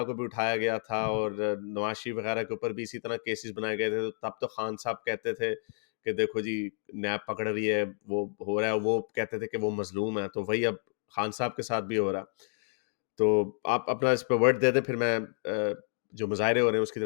को भी उठाया गया था और नवाज शरीफ वगैरह के ऊपर भी इसी तरह केसेस बनाए गए थे। तो तब तो खान साहब कहते थे कि देखो जी नैब पकड़ रही है, वो हो रहा है, वो कहते थे कि वो मजलूम है। तो वही अब खान साहब के साथ भी हो रहा है। तो आप अपना इस पे वर्ड दे दें, फिर मैं जो मुजाहरे हो रहे हैं उसकी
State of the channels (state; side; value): silent; right; 56 dB below the other